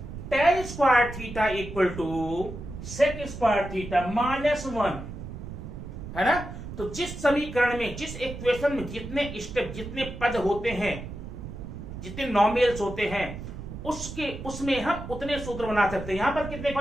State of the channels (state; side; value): noise; right; rumble, 10 dB below the sound